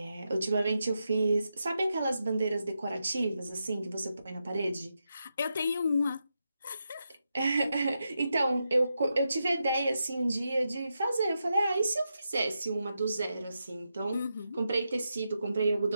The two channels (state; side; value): inverted; both; correlation -0.86